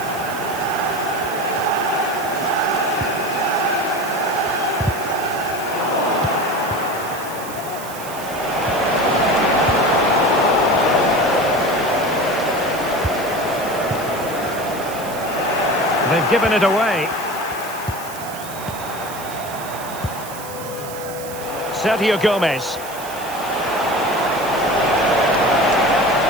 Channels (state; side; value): noise; right; hiss, 14 dB below the sound